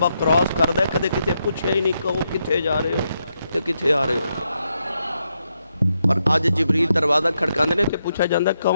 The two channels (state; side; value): inverted; both; correlation -0.82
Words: کراس کر دے، کدے کتے پوچھے ہی نہیں کہو کتے جا رہے ہو تے کتے آ رہے ہو، اور آج جبریل دروازہ کھڑکان دینے تے پوچھا جاندہ